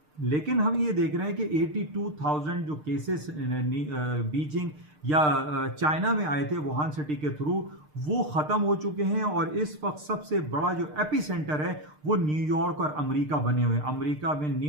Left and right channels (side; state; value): left; late; 6.6 ms